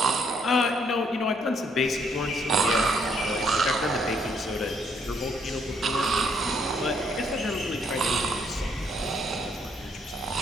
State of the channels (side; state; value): both; normal; correlation 0.69